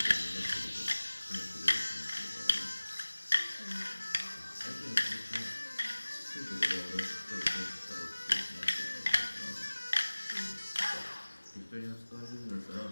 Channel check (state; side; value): inverted; both; correlation -1.00